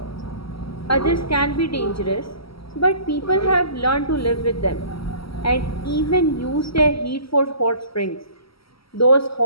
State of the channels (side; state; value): right; late; 0.75 ms